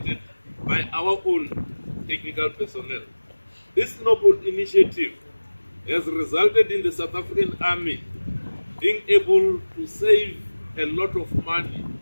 by our own technical personnel. This noble initiative has resulted in the South African Army being able to save a lot of money,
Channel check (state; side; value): inverted; both; correlation -1.00